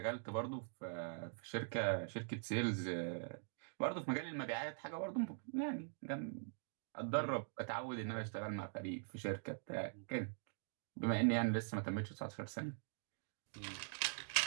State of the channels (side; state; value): left; silent; digital silence